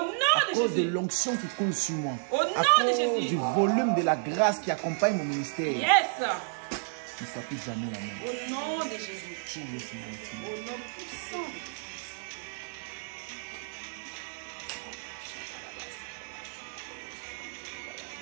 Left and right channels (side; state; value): left; silent; digital silence